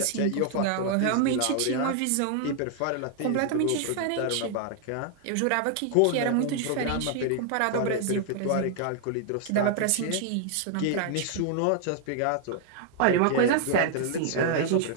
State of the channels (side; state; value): both; different; correlation 0.00